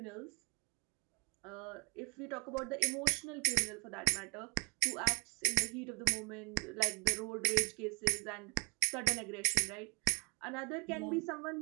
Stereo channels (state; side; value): quieter; left; 32.8 dB